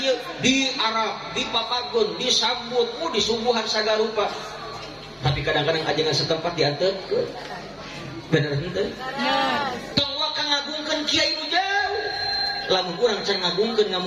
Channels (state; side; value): identical; both; correlation 1.00